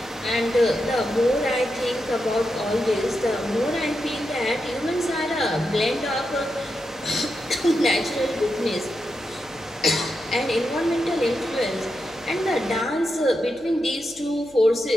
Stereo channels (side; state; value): left; noise; hum, 28 dB below the sound